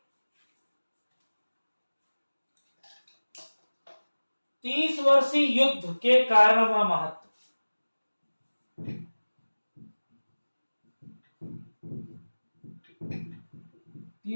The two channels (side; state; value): both; inverted; correlation -1.00